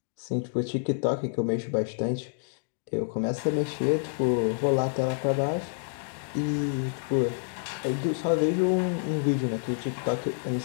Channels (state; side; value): silent; right; digital silence